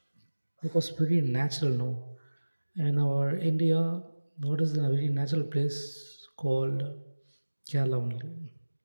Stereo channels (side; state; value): both; inverted; correlation -1.00